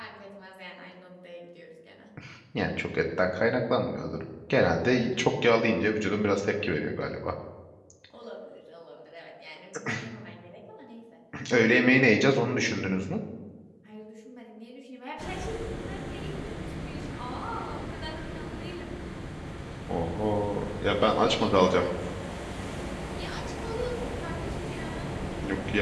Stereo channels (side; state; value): both; identical; correlation 1.00